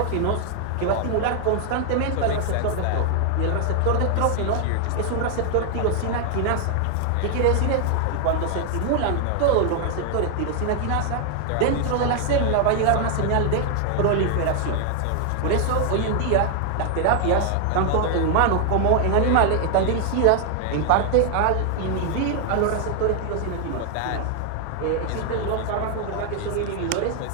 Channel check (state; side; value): different; both; correlation 0.00